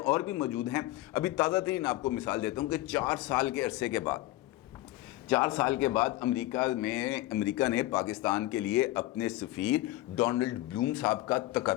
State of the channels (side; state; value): right; quieter; 17.2 dB